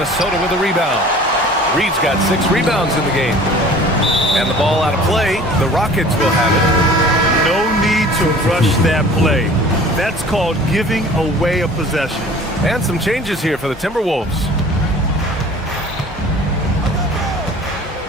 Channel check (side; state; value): both; normal; correlation 0.46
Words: with a rebound. Reed's got 6 rebounds in the game. And the ball out of play. The Rockets will have it. No need to rush that play. That's called giving away a possession. And some changes here for the Timberwolves.